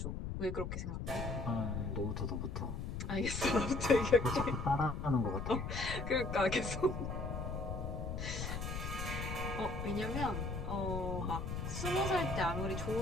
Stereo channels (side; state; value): left; noise; rumble, 4 dB below the sound